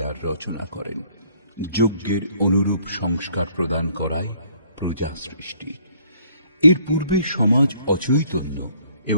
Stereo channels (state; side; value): inverted; both; correlation -0.62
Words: রচনা করেন। যজ্ঞের অনুরূপ সংস্কার প্রদান করাই প্রজা সৃষ্টি। এর পূর্বে সমাজ অচৈতন্য